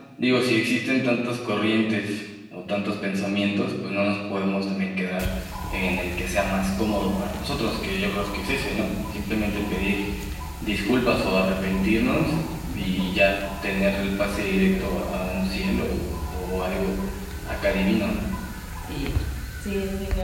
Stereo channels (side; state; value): both; identical; correlation 1.00